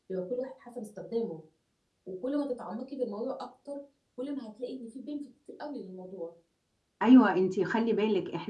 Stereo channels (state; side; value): identical; both; correlation 1.00